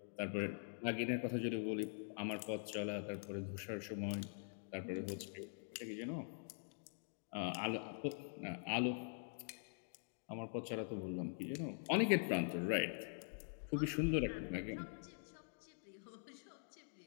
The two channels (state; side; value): silent; right; digital silence